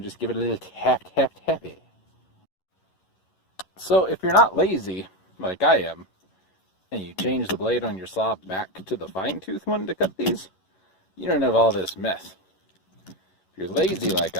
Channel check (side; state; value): right; late; 11 ms